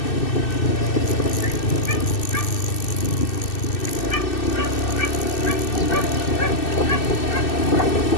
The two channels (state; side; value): late; right; 2.6 ms